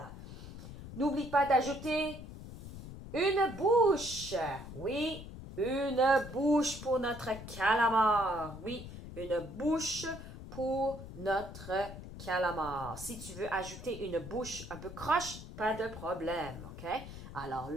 N'oublie pas d'ajouter une bouche. Oui, une bouche pour notre calamar. Oui, une bouche pour notre calamar. Si tu veux ajouter une bouche un peu croche, pas de problème. OK? Alors,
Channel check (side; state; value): left; noise; rumble, 12 dB below the sound